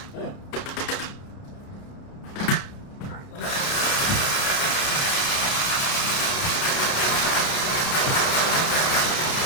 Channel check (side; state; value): right; late; 30 ms